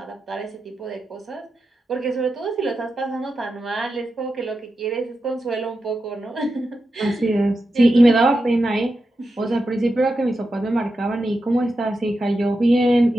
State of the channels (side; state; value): both; normal; correlation 0.89